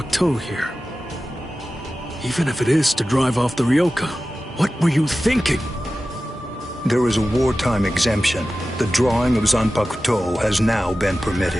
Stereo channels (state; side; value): normal; both; correlation 0.95